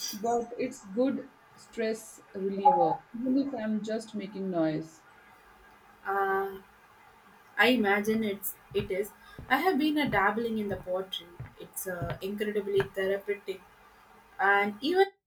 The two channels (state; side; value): identical; both; correlation 1.00